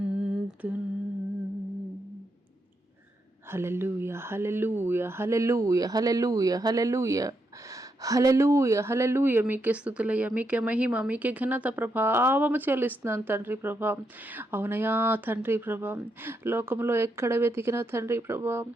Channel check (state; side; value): normal; both; correlation 0.81